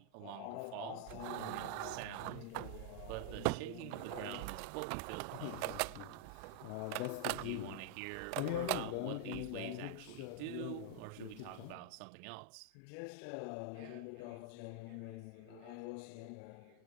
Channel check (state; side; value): different; both; correlation 0.00